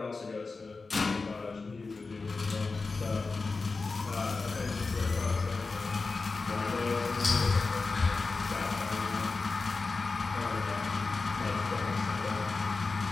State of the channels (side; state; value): right; quieter; 4.0 dB